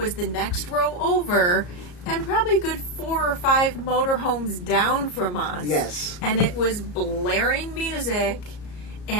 the next row over, and probably a good 4 or 5 motorhomes down from us. Yes. And it was blaring music,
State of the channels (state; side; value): late; right; 34 ms